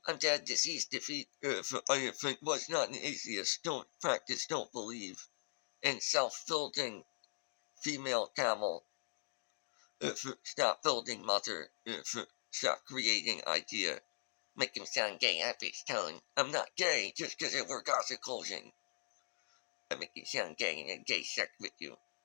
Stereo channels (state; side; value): silent; right; digital silence